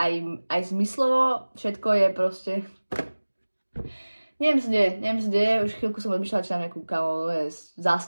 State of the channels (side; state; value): both; inverted; correlation -1.00